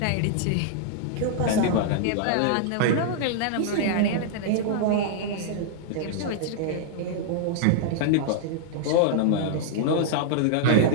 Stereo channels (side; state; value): both; different; correlation -0.01